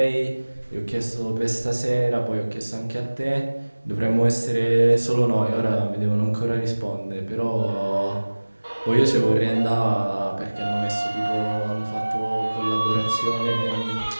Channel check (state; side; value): inverted; both; correlation -1.00